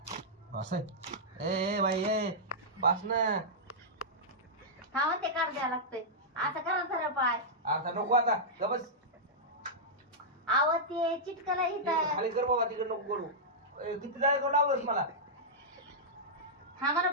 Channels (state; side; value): normal; both; correlation -0.10